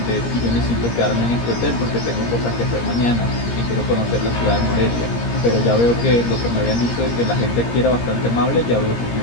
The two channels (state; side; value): late; right; 17 ms